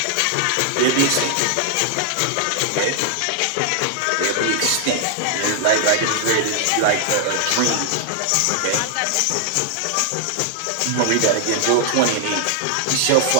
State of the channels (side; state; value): both; different; correlation 0.00